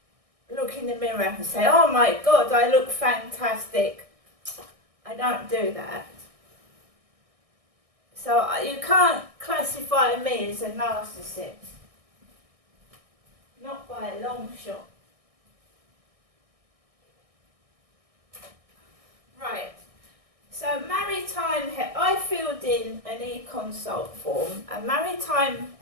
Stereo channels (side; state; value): left; late; 1.6 ms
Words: look in the mirror and say, oh my God, I look fantastic. I don't do that. So you can't classify me as a narcissist. Not by a long shot. Right. So I filled in an e-consult form, and Maritime